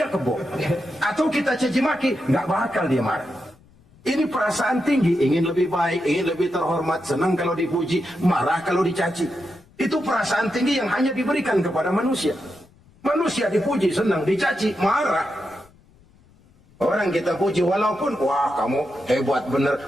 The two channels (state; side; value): noise; left; rumble, 29 dB below the sound